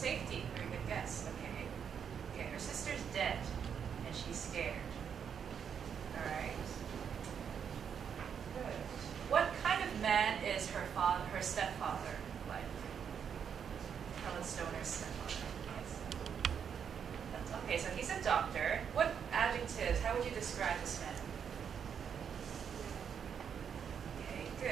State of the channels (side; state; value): left; quieter; 7.5 dB